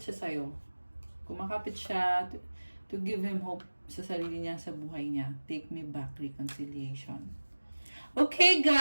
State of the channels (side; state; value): both; inverted; correlation -1.00